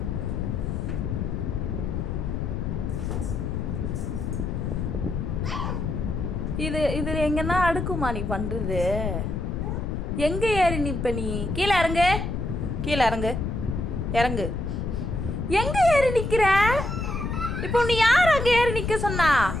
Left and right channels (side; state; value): left; noise; rumble, 2 dB below the sound